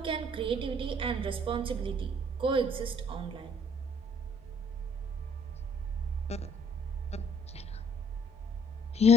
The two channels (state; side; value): normal; both; correlation 0.61